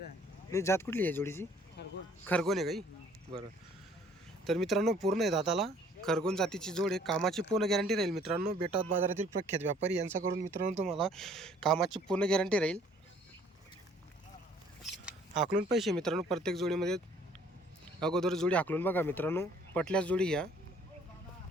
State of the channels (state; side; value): normal; both; correlation 0.58